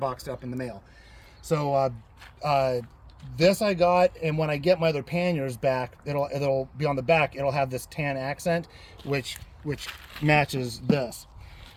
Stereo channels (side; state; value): both; identical; correlation 1.00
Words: up in the mail. So this I got, and when I get my other panniers back, it'll be on the back. It'll have this tan accent, which matches this.